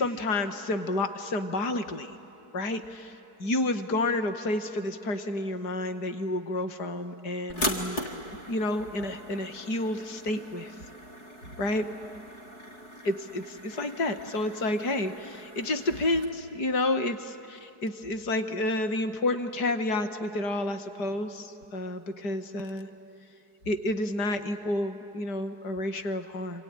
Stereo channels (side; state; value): right; late; 4.7 ms